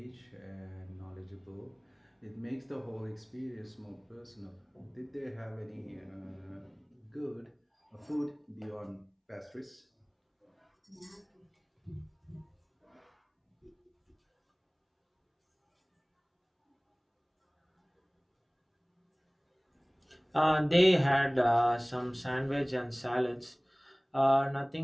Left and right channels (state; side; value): identical; both; correlation 1.00